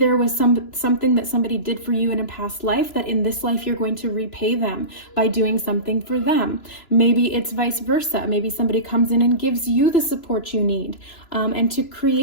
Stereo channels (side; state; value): right; late; 2.9 ms